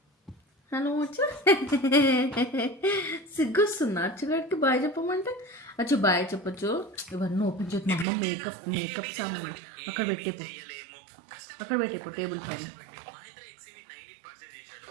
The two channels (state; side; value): drops out; left; at 8.1 s